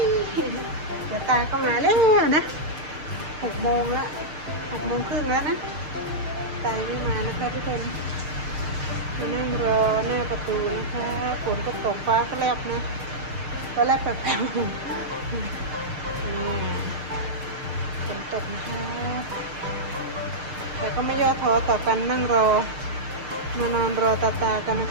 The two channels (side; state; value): left; late; 6.6 ms